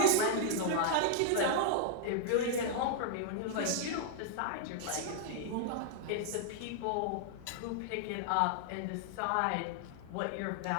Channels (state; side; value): different; both; correlation -0.01